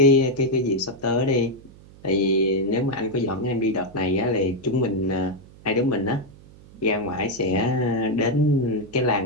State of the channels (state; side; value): noise; right; hum, 22 dB below the sound